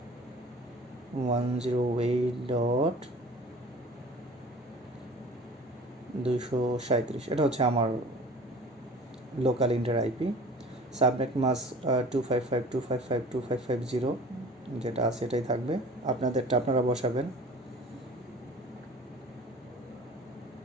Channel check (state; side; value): normal; both; correlation 0.43